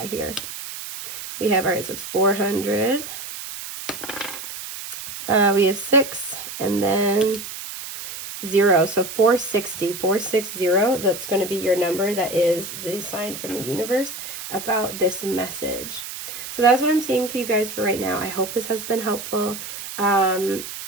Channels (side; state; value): right; noise; hiss, 9 dB below the sound